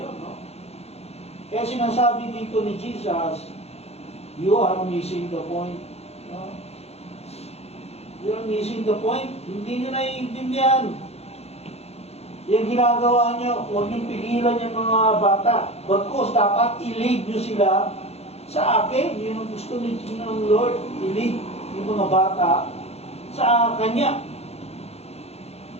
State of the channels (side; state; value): right; late; 0.30 ms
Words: yun. No? Kaya sinasabi dito ni Jesus, you are missing the point. No? You are missing the point. Hindi nyo naiintindihan. Yung ginagawa nyo, huwag nyo pigilan yung mga bata. Bagkos, dapat i-lead nyo sila sa akin. Yun ang gusto ng Lord. I-lead yung mga bata sa Kanya.